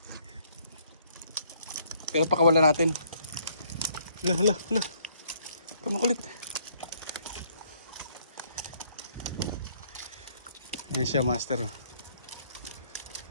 Pero pakawala natin. Hala. Kamakulit. Ayan siya, master.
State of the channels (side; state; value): both; inverted; correlation -0.66